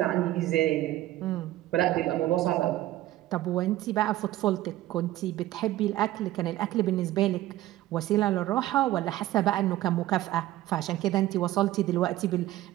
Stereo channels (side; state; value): left; quieter; 15.1 dB